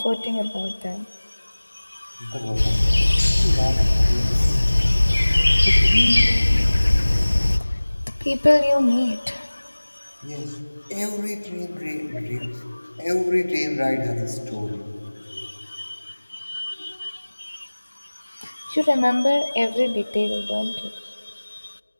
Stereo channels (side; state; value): both; inverted; correlation -1.00